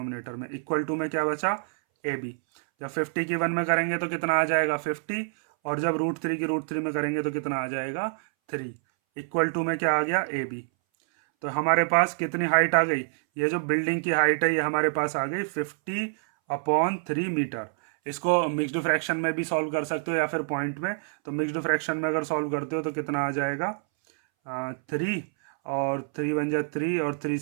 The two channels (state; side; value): silent; left; 60 dB below the other